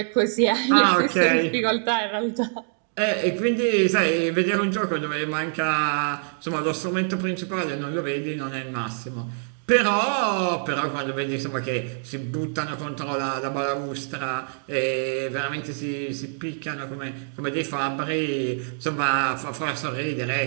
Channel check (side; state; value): left; silent; digital silence